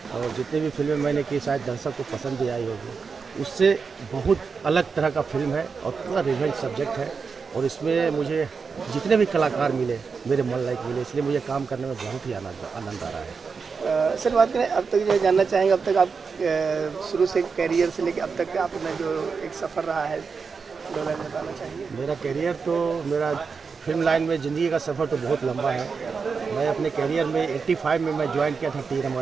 और जितनी भी फिल्में मैंने की शायद दर्शक को पसंद भी आई होगी। उससे बहुत अलग तरह का फिल्म है और पूरा रिवेंज सब्जेक्ट है, और इसमें मुझे जितने भी कलाकार मिले मेरे मन लायक मिले, इसलिए मुझे काम करने में बहुत ही आनंद आ रहा है। सर, बात करें अब तक जो जानना चाहेंगे, अब तक आप शुरू से कैरियर से लेकर अब तक आपने जो एक सफ़र रहा है, दो लाइन बताना चाहिए। मेरा कैरियर तो मेरा फिल्म लाइन में ज़िंदगी का सफ़र तो बहुत लंबा है। मैं अपने कैरियर में 85 में मैं ज्वाइन किया था टी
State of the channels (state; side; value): quieter; left; 5.3 dB